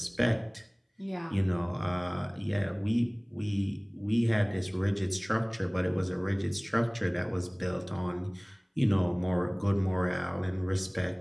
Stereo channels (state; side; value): identical; both; correlation 1.00